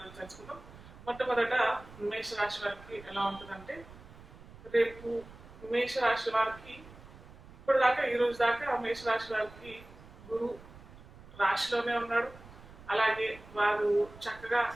తెలుసుకుందాం. మొట్టమొదట మేషరాశి వారికి ఎలా ఉంటుందంటే, రేపు మేషరాశి వారికి ఇప్పటిదాకా ఈ రోజు దాకా మేషరాశి వారికి గురు రాశిలోనే ఉన్నాడు. అలాగే వారు చక్కగా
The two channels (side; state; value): right; noise; rumble, 19 dB below the sound